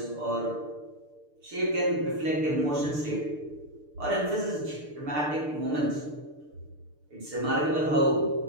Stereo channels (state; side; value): late; left; 6.7 ms